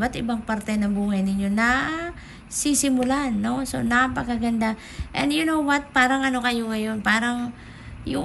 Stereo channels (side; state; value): both; identical; correlation 1.00